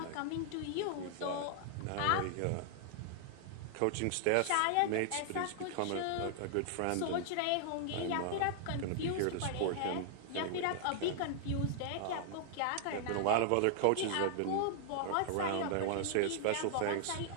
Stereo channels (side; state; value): both; different; correlation 0.00